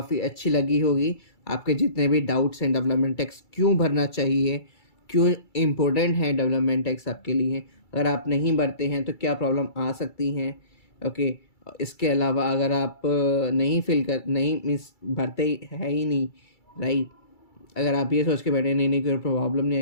अच्छी लगी होगी। आपके जितने भी डाउट्स हैं डेवलपमेंट टैक्स क्यों भरना चाहिए, क्यों इम्पोर्टेंट है डेवलपमेंट टैक्स आपके लिए, अगर आप नहीं भरते हैं तो क्या प्रॉब्लम आ सकती हैं, ओके। इसके अलावा अगर आप नहीं मीन्स भरते है ही नहीं, राइट, अगर आप ये सोच के बैठे नहीं नहीं कोई प्रॉब्लम नहीं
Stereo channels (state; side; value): late; right; 2.3 ms